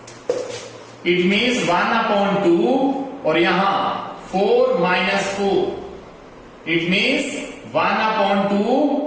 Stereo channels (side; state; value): both; identical; correlation 1.00